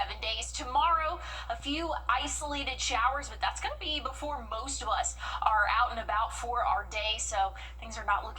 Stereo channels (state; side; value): identical; both; correlation 1.00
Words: days. Tomorrow, a few isolated showers, but that's going to be before most of us are out and about for our day, so things are not